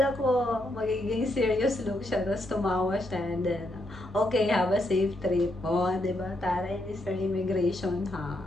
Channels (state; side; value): normal; both; correlation 0.79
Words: ko magiging serious look siya. Tapos tumawa siya. And then, okay, have a safe trip. Di ba? Taray ni Sir Immigration, ha?